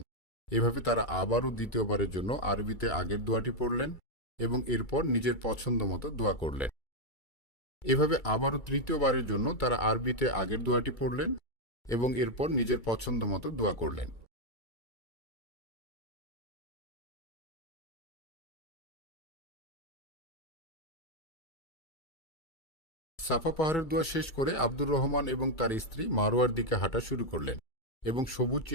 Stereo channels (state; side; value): late; right; 2.3 ms